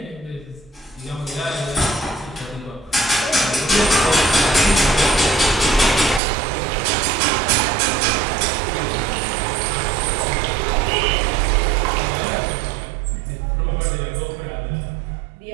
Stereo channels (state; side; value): drops out; left; at 6.2 s